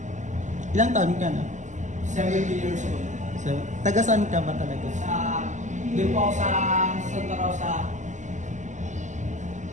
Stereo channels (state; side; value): late; left; 0.35 ms